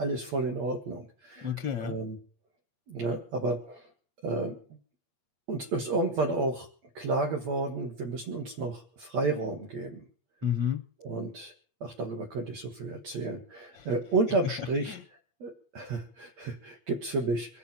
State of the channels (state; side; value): late; left; 8.5 ms